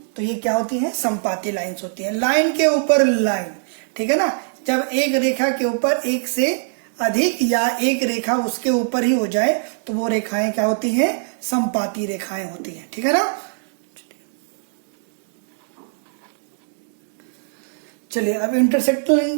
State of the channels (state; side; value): silent; left; 65 dB below the other